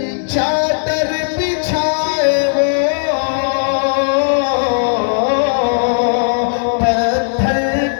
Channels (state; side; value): silent; right; digital silence